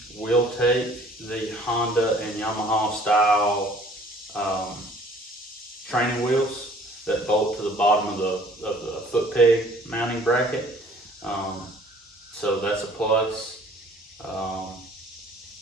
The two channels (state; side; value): normal; both; correlation 0.54